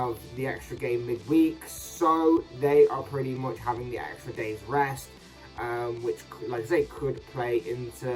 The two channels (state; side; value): identical; both; correlation 1.00